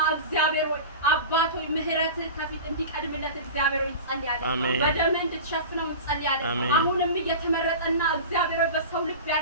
እግዚአብሔር ሆይ አባቶ ምህረት ከፊት እንዲቀድምለት እግዚአብሔር ሆይ እንጸልያለን። በደምህ እንድትሸፍነው እንጸልያለን። አሁንም እየተመረጠና እግዚአብሔር ሆይ በሰው ልብ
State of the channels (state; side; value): inverted; both; correlation -0.31